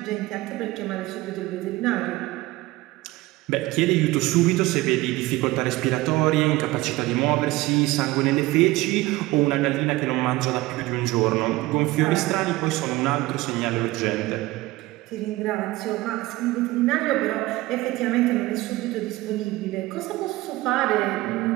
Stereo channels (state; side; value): quieter; left; 19.2 dB